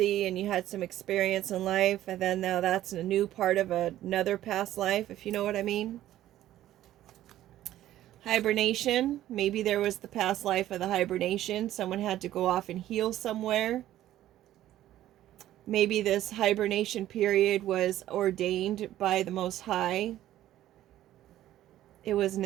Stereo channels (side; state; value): left; quieter; 13.4 dB